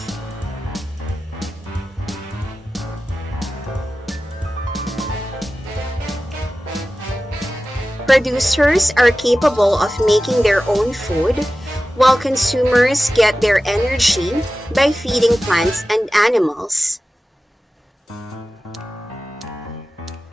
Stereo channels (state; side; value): normal; both; correlation 0.95